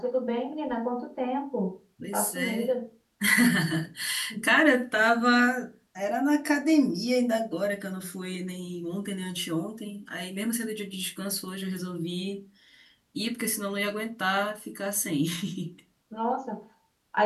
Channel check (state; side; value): identical; both; correlation 1.00